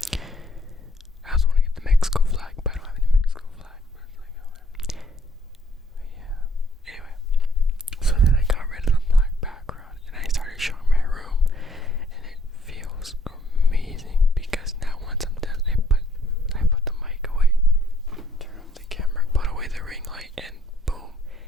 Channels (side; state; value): both; normal; correlation 0.64